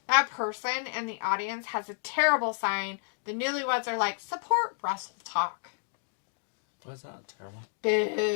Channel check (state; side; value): silent; right; digital silence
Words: That person in the audience has a terrible sign. The newlyweds are like, support Wrestle Talk. Why is that terrible?